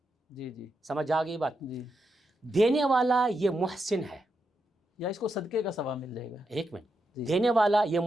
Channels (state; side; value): normal; both; correlation 0.84